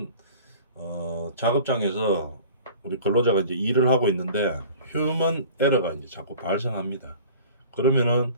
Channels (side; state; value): both; inverted; correlation -0.44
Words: 작업장에서 우리 근로자가 이제 일을 하고 있는데 휴먼 에러가 이제 자꾸 발생합니다. 그러면은